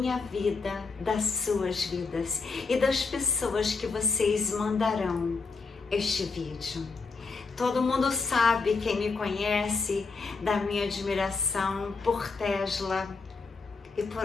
vida, das suas vidas e das pessoas que vocês mandarão este vídeo. Todo mundo sabe, quem me conhece, da minha admiração por Tesla e por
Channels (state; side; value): quieter; right; 4.4 dB